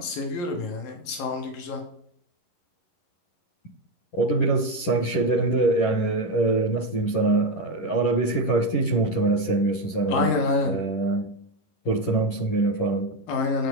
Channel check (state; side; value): late; right; 11 ms